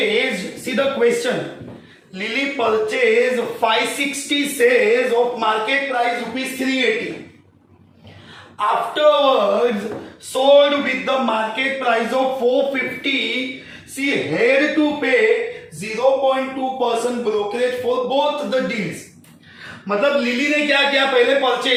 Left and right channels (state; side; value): identical; both; correlation 1.00